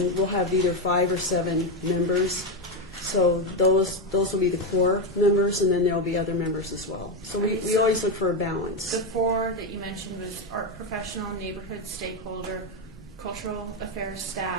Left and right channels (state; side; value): normal; both; correlation 0.09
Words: we'll have either 5 or 7 members. So those will be the core members, and then there'll be other members as well. So we always look for a balance. The 4 that you mentioned was art professional, neighborhood stakeholder, cultural affairs